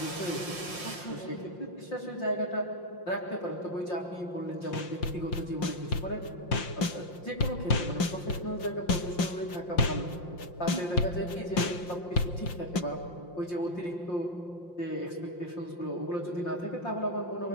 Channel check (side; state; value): right; late; 5.7 ms